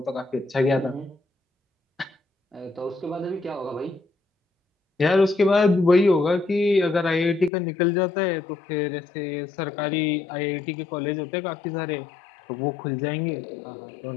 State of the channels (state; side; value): drops out; right; at 7.5 s